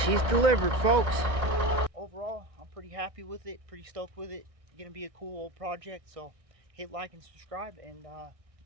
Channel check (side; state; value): left; late; 1.6 ms